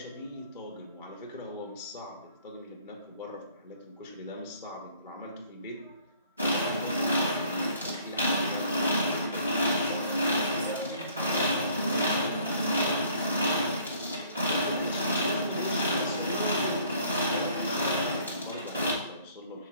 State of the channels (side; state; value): both; inverted; correlation -0.58